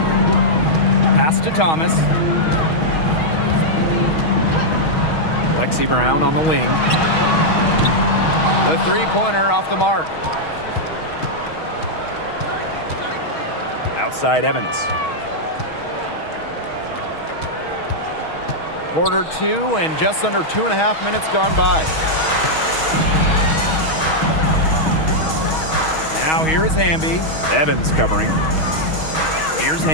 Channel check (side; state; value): right; late; 6.3 ms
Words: Pass to Thomas. Lexi Brown on the wing. The three-pointer off the mark. Outside Evans. Quarter 2 and just under 2.5 minutes gone by. Now here is Hamby. Evans covering. Here's